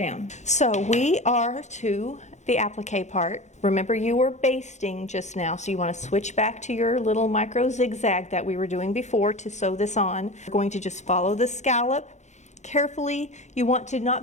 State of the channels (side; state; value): right; late; 0.34 ms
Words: So we are to the applique part. Remember, you were basting just now, so you want to switch back to your little micro zigzag that we were doing before to sew this on. We're going to just follow the scallop carefully. You want to